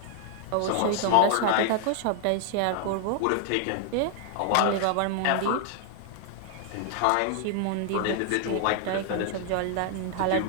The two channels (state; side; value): different; both; correlation 0.00